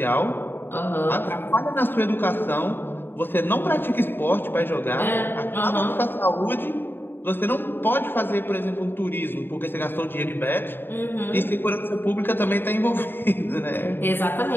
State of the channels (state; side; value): late; right; 0.099 ms